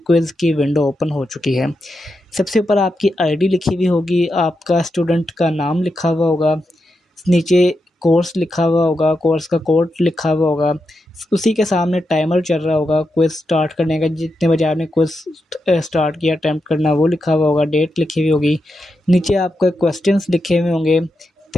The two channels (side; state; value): both; normal; correlation 0.87